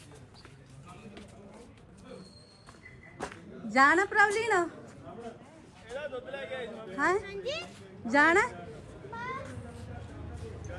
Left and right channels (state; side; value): identical; both; correlation 1.00